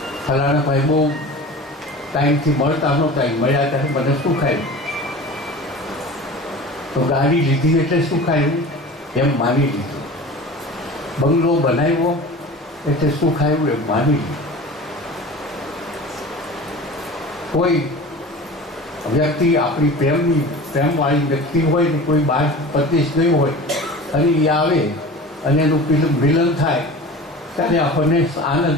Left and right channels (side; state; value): both; normal; correlation 0.37